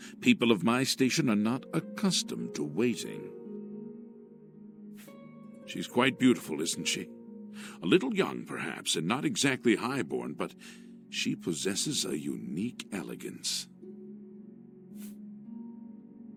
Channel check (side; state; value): both; identical; correlation 1.00